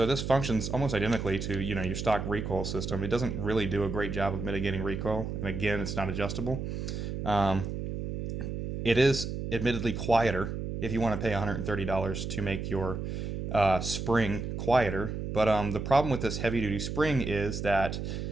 this functions almost identically to, your stock recoil system. It doesn't really do a great job of mitigating recoil, and again, it's not adjustable. Um, it is admittedly quieter if you want to pay $130 to make your spring quieter. But the problem with this heavy duty spring is that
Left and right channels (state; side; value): noise; right; hum, 4 dB below the sound